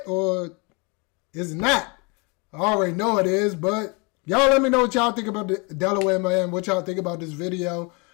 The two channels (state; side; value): quieter; right; 30.7 dB